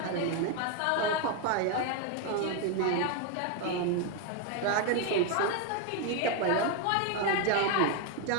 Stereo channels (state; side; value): different; both; correlation 0.01